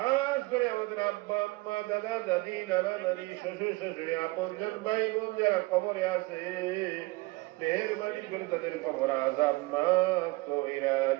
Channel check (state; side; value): quieter; left; 22.8 dB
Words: করে আমাদের আব্বা আম্মা, দাদা দাদি, নানা নানি, শ্বশুর শাশুড়ি, আপনজন ভাই বোন যারা কবরে আছে, মেহেরবানি করে তাদের কবর আযাব মাফ কইরা